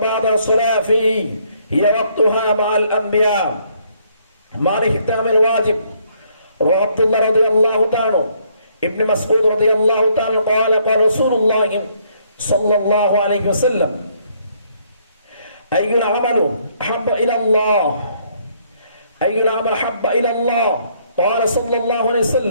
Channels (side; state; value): both; inverted; correlation -0.68